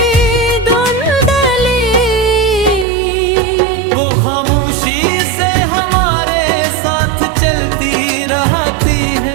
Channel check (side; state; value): left; drops out; at 2.9 s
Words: धुंधली। वो खामोशी से हमारे साथ चलती रहती है